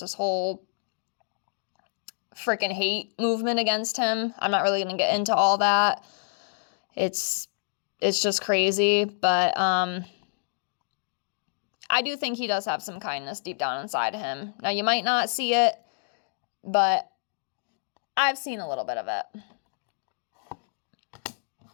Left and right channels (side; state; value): right; silent; digital silence